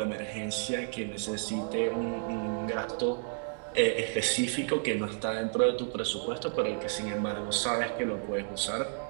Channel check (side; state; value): left; silent; 57 dB below the other